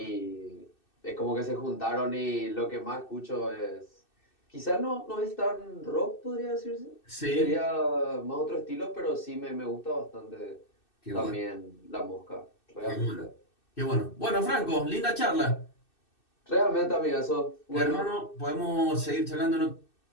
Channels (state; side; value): late; right; 2.6 ms